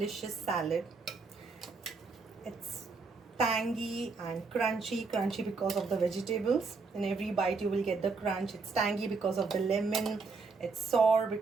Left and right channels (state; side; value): quieter; left; 4.3 dB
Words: salad. It's tangy and crunchy because of the vegetables. In every bite you will get the crunch. It's tangy because of the lemon. It's sour